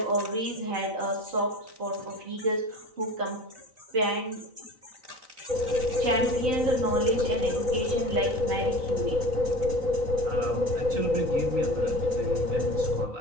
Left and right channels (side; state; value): left; late; 3.9 ms